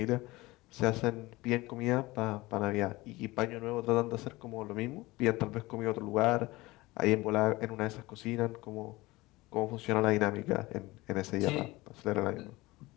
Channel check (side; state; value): right; quieter; 20.7 dB